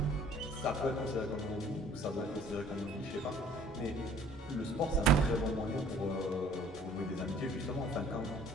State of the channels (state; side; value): normal; both; correlation 0.54